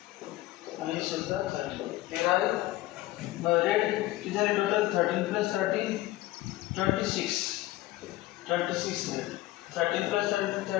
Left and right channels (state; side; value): quieter; right; 17.1 dB